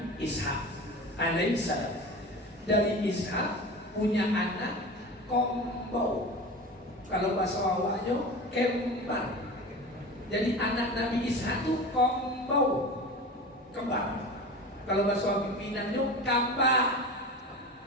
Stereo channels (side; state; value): both; normal; correlation 0.32